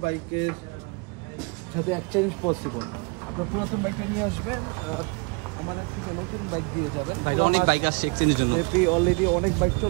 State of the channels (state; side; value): quieter; left; 31.5 dB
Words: বাইকের সাথে এক্সচেঞ্জ পসিবল। আপনার পুরাতন বাইকটা নিয়ে আসবেন, আমাদের থেকে নতুন বাইক দিয়ে যাবেন। অনেক বাইক আসছে এক্সচেঞ্জের জন্য, অলরেডি অনেক বাইক